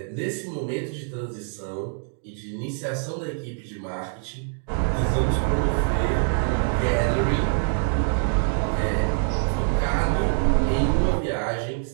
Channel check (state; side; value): silent; left; 62 dB below the other